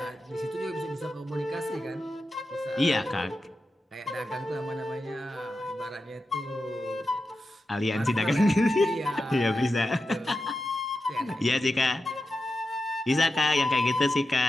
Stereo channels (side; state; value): both; normal; correlation 0.90